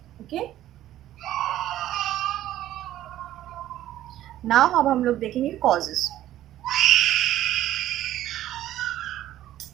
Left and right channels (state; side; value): quieter; left; 13.3 dB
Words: ओके, नाउ अब हम लोग देखेंगे कॉजेस।